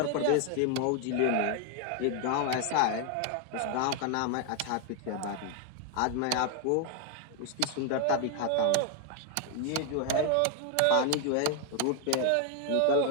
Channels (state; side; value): different; both; correlation 0.00